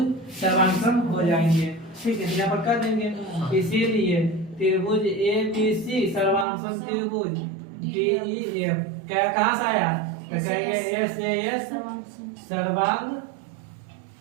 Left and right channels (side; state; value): left; drops out; at 6.5 s